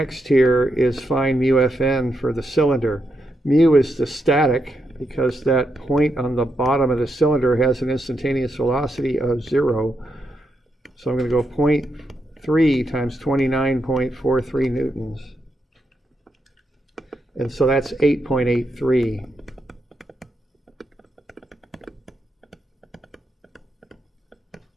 here is find mu Fn for the cylinder. Mu is the static, because that point on the bottom of the cylinder has an instantaneous velocity of 0. So I'm going to go 0.3 times 29.43 newtons. And so that's 8.83.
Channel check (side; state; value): both; normal; correlation 0.82